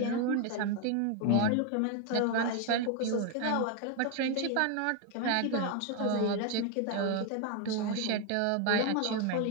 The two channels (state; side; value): different; both; correlation 0.01